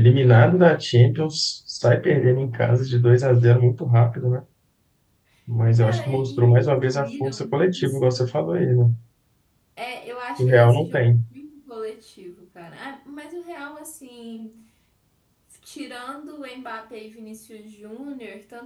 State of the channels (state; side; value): identical; both; correlation 1.00